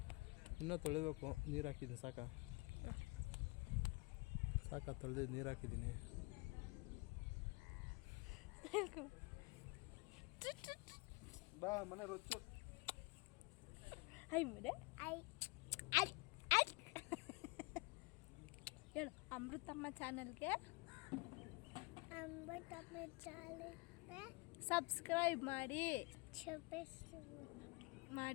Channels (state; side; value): quieter; right; 27.2 dB